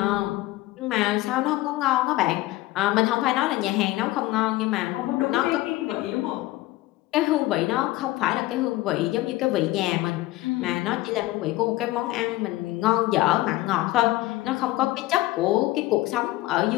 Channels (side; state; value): right; quieter; 18.0 dB